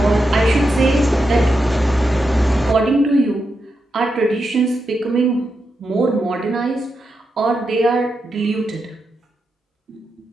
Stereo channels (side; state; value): both; normal; correlation 0.86